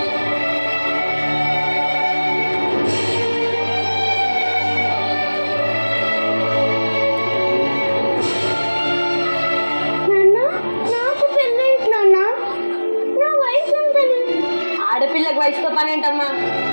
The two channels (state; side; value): inverted; both; correlation -1.00